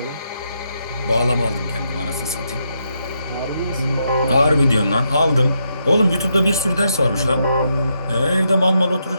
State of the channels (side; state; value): both; inverted; correlation -0.80